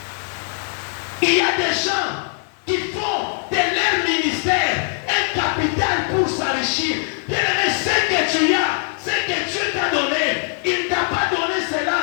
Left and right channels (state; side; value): silent; right; 58 dB below the other